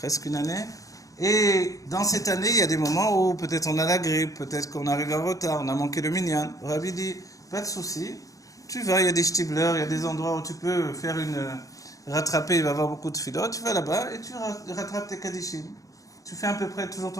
une année. Et dans cette année, il y a des moments où peut-être on a la grippe, peut-être qu'on arrive en retard, on a manqué le minyan. Le Rabbi dit, pas de souci, tu vas, il y a des shtiblers, il y a des endroits où tu peux faire rattraper, il va y avoir beaucoup de philo, tu vas là-bas et tu rattrapes tes Kaddishim. Tu fais à peu près toujours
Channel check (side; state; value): right; late; 0.16 ms